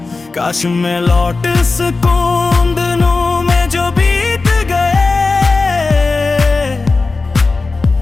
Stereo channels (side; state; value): right; quieter; 3.8 dB